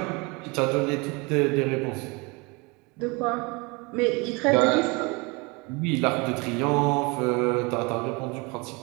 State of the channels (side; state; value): left; quieter; 27.7 dB